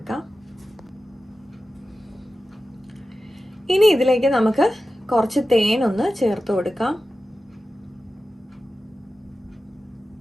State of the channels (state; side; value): normal; both; correlation 0.93